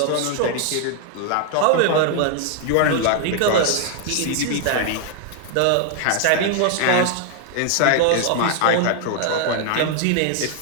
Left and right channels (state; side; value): different; both; correlation 0.00